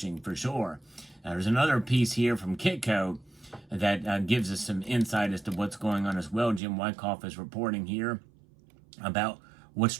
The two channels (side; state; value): left; drops out; at 6.6 s